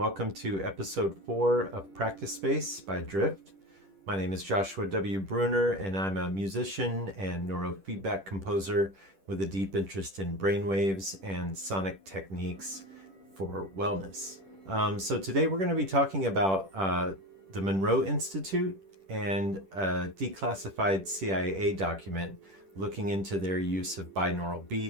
to episode 4 of Practice Space by Drift. My name is Joshua W. Bruner and I'm a musician and neurofeedback composer with a deep interest in brainwaves and sonic techniques for wellness. So today we're going to be talking about the Monroe Institute and a declassified CIA document looking into their use of binaural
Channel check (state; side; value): late; left; 10 ms